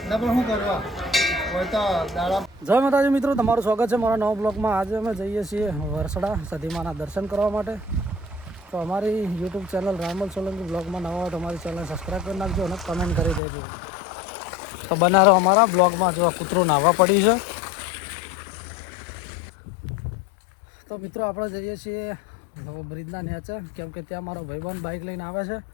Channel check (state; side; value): drops out; right; at 13.4 s